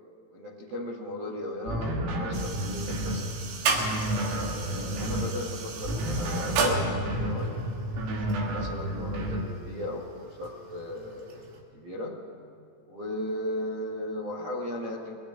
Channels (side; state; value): left; late; 18 ms